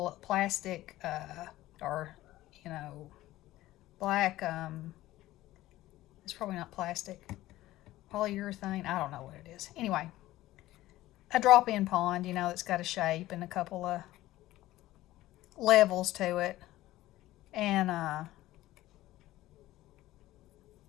plastic, or, black, it's probably not plastic, polyurethane, I don't know what it is. Anyway, a drop-in pond, it's got a shape and a couple of levels to it. And,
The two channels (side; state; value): right; quieter; 16.1 dB